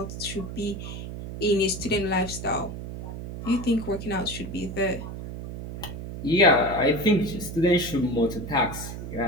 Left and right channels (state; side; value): noise; right; hum, 8 dB below the sound